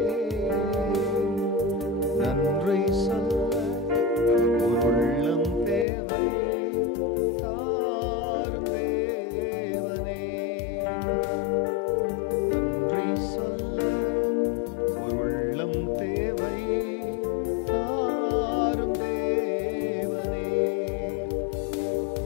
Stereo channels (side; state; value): right; drops out; at 5.9 s